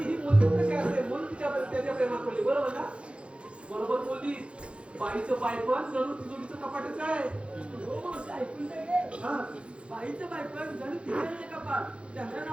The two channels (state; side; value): late; left; 0.059 ms